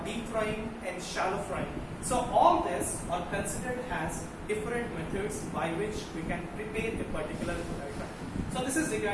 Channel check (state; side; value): identical; both; correlation 1.00